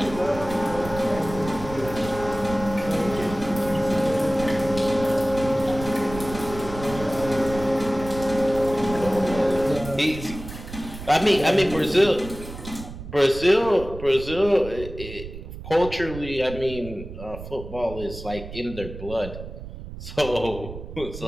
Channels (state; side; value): noise; right; rumble, 11 dB below the sound